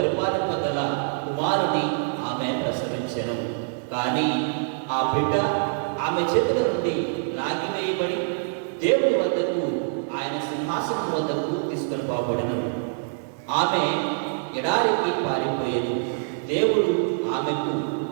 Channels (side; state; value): left; silent; 62 dB below the other